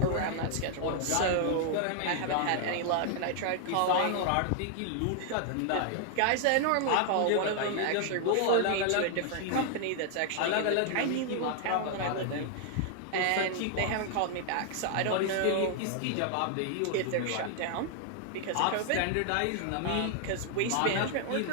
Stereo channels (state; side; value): different; both; correlation 0.00